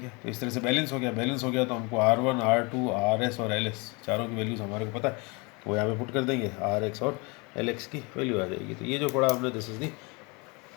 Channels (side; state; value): right; quieter; 28.9 dB